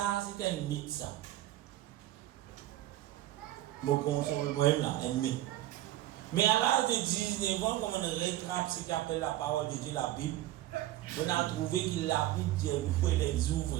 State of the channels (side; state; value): left; quieter; 14.5 dB